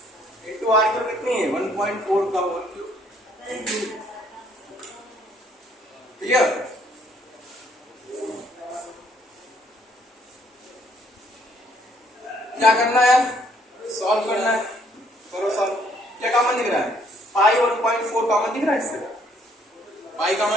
इंटू आर की वैल्यू कितनी है 1.4 का होल क्यूब। क्लियर, क्या करना है, सॉल्व करना है, करो सॉल्व। क्या कॉमन दिख रहा है, पाई 1.4 कॉमन दिख रहा है इससे, पाई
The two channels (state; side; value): normal; both; correlation 0.65